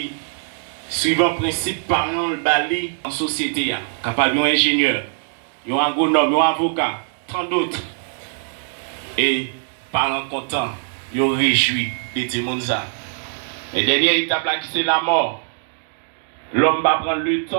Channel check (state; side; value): silent; left; digital silence